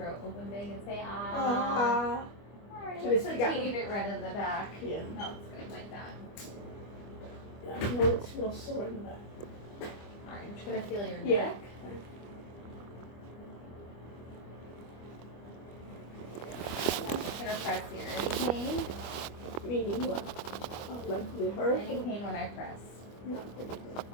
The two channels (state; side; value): late; right; 25 ms